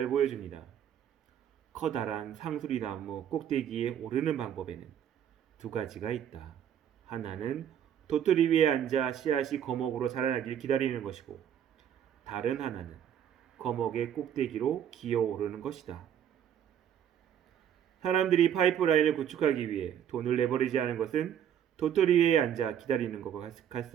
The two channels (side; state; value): left; quieter; 9.5 dB